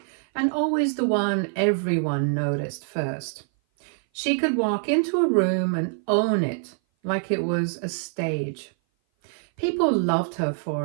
and always the one everyone noticed first. She could walk into a room and own it like it was a stage. People loved her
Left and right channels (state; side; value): silent; left; 58 dB below the other